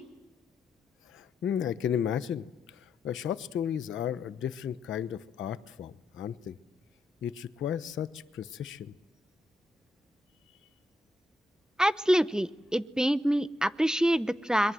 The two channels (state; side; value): normal; both; correlation 0.83